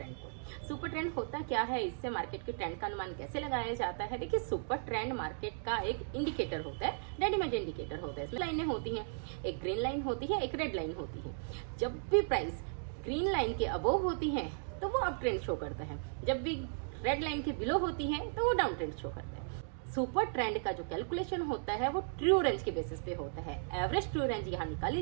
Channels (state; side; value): silent; left; digital silence